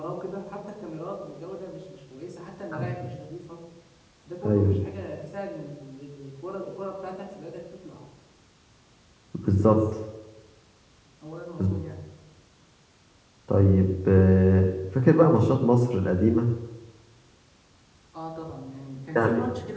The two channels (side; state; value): both; identical; correlation 1.00